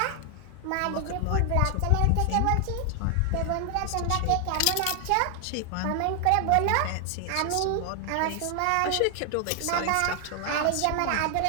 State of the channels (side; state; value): both; different; correlation 0.00